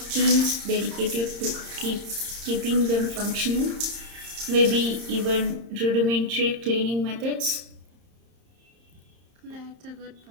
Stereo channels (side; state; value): left; late; 30 ms